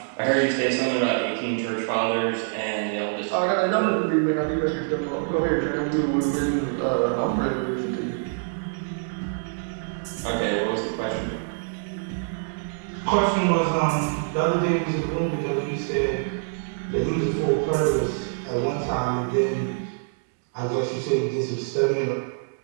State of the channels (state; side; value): silent; left; 62 dB below the other